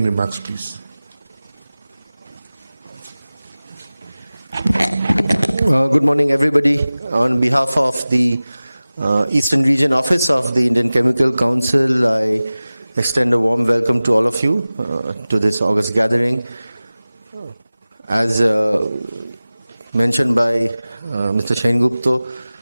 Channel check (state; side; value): inverted; both; correlation -0.97